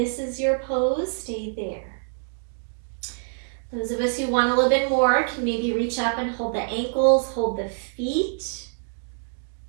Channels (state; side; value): silent; left; digital silence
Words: is your pose, stay there. Those of us who want a little bit more can maybe reach up and hold the ankles, hold the feet,